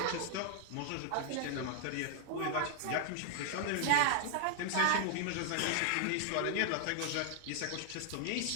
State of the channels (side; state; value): both; different; correlation -0.01